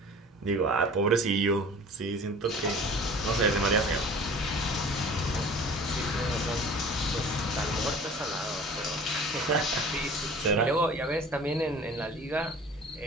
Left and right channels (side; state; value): both; normal; correlation 0.44